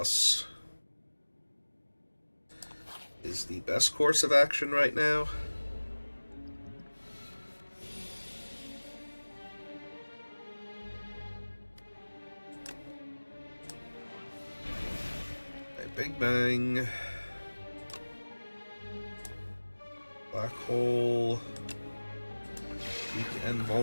is the best course of action right now. Big Bang. Black Hole. Weak and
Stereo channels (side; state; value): both; inverted; correlation -1.00